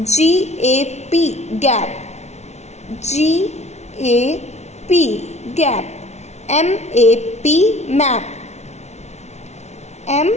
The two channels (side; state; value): right; late; 0.32 ms